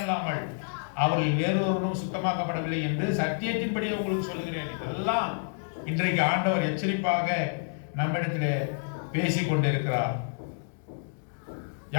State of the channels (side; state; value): right; silent; digital silence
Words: அல்லாமல் அவர்கள் வேறொருவரும் சுத்தமாக்கப்படவில்லை என்று சத்தியத்தின்படி உங்களுக்கு சொல்லுகிறேன். இதெல்லாம் இன்றைக்கு ஆண்டவர் எச்சரிப்பாக நம்மிடத்திலே பேசிக் கொண்டிருக்கிறார்.